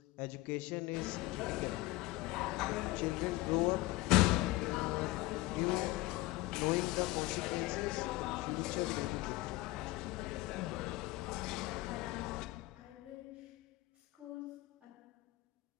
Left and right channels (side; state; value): right; quieter; 19.4 dB